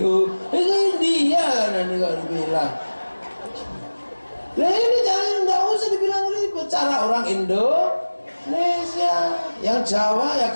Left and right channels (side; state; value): both; inverted; correlation -1.00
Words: India kan ini kalau dibilang. Nah ini jangan, nggak usah dibilang ribet. Cara orang Indonesia. Yang Jawa ya